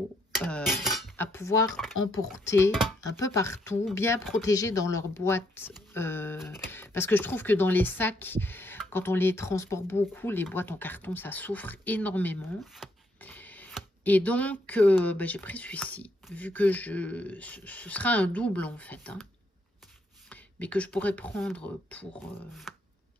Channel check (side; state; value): both; normal; correlation 0.74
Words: à pouvoir emporter un peu partout, bien protégés dans leur boîte. Parce que je trouve que dans les sacs, quand on les transporte beaucoup, les boîtes en carton, ça souffre énormément. Et donc, bah, j'ai pris celui-ci, vu que ce sera un double en fait, hein, mais que je pourrais prendre pour